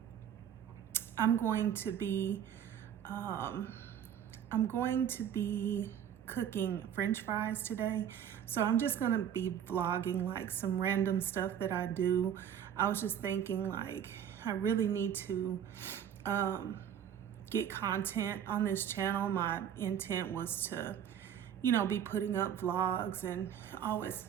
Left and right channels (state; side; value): quieter; left; 9.2 dB